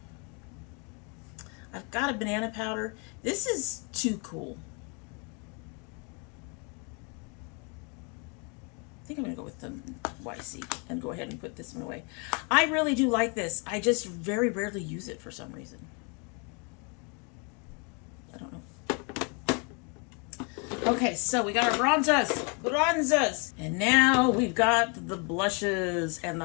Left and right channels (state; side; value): quieter; right; 34.6 dB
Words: I've got a banana powder. This is too cool. I think I'm going to go with the YC and go ahead and put this one away. I really do like this. I just very rarely use it for some reason. I don't know. Okay, so we got our bronzers, and now we've got the blushes and the